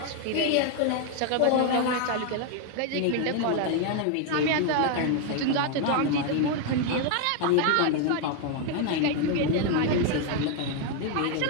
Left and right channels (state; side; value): different; both; correlation 0.01